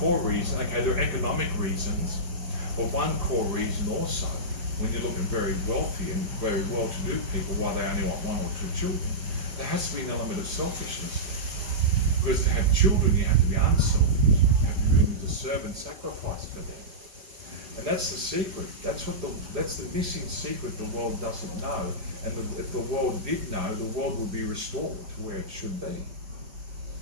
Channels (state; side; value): late; left; 5.2 ms